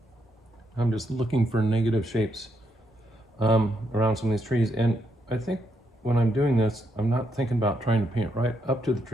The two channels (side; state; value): both; normal; correlation 0.78